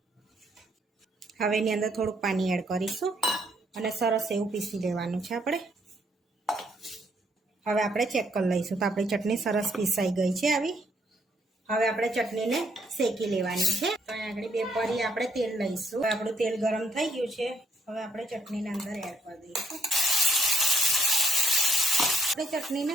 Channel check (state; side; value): normal; both; correlation 0.71